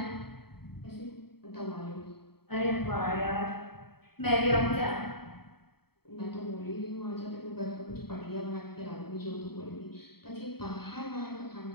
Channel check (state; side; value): late; right; 0.96 ms